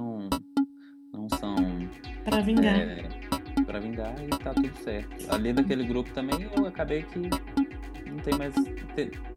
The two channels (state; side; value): identical; both; correlation 1.00